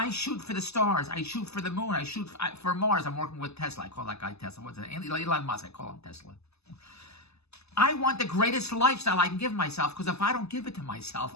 shoot for the stars. I shoot for the moon. I shoot for Mars. I'm working with Tesla. I call that guy Tesla. What's it? Elon Musk. I call him Tesla. I want the greatest lifestyle I can give myself, because if I don't give it to myself,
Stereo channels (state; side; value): late; right; 0.79 ms